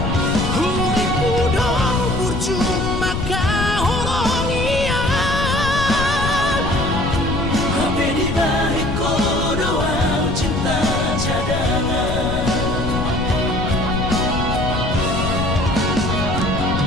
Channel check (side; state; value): left; noise; rumble, 3 dB below the sound